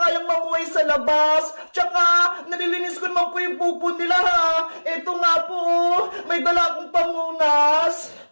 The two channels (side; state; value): both; inverted; correlation -1.00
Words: mamuhay sa labas. Tsaka, nalilinis ko naman po yung pupo nila, ha? Eto nga po, may dala akong pamunas.